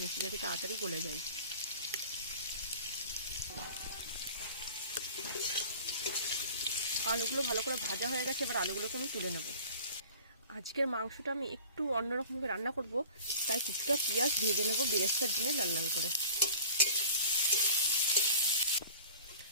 নিচ্ছি যাতে তাড়াতাড়ি গলে যায়। আলুগুলো ভালো করে ভাজা হয়ে গেছে, এবার আলুগুলোকে আমি তুলে নেব। আজকের মাংসটা আমি একটু অন্যরকমভাবে রান্না করব, তাই কিছুটা পেঁয়াজ ভেজে নেব বেরেস্তার জন্য লাল লাল করে।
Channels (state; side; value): inverted; both; correlation -0.43